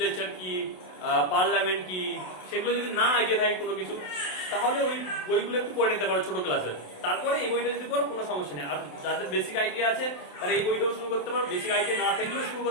কি, পার্লামেন্ট কি, সেগুলো যদি না আইডিয়া থাকে কোনো কিছু, তাহলে ওই বইগুলো একটু পড়ে নিতে পারো ছোট ক্লাসে। তারপরে এই বইটা যদি পড়ো কোনো সমস্যা নেই। আর যাদের বেসিক আইডিয়া আছে তারা এই বইটাও শুরু করতে পারো, বেসিক আইডিয়া না থাকলেও শুরু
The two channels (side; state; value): right; late; 27 ms